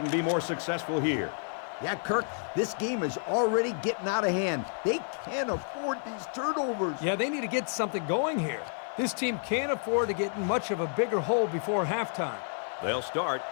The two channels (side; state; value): right; silent; 58 dB below the other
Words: be more successful here. Yeah, Kirk, this game is already getting out of hand. They can't afford these turnovers. Yeah, they need to get something going here. This team can't afford to get in much of a bigger hole before halftime. They'll start